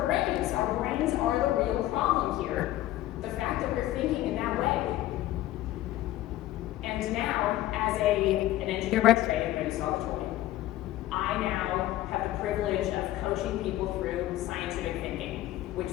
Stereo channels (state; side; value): quieter; right; 15.0 dB